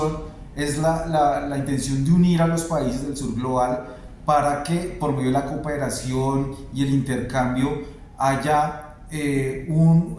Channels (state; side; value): identical; both; correlation 1.00